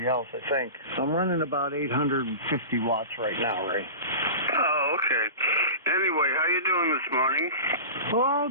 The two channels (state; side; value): inverted; both; correlation -0.31